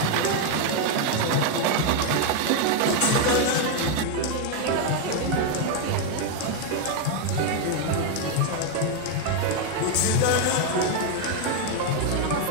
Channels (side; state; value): both; different; correlation 0.01